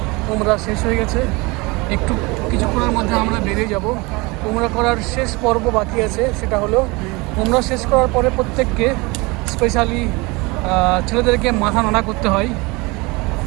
উমরা শেষ হয়ে গেছে। একটু কিছুক্ষণের মধ্যে আমরা বেরিয়ে যাব। উমরা করার শেষ পর্ব বাকি আছে, সেটা হলো উমরা শেষ করার পরে প্রত্যেককে স্পেশালি ছেলেদেরকে মাথা নাড়া করতে হয়,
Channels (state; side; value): quieter; left; 25.2 dB